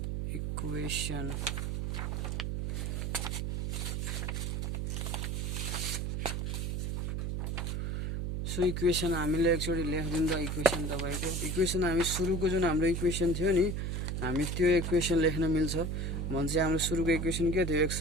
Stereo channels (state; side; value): noise; right; hum, 1 dB below the sound